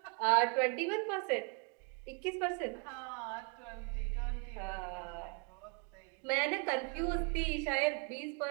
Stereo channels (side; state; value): left; quieter; 35.8 dB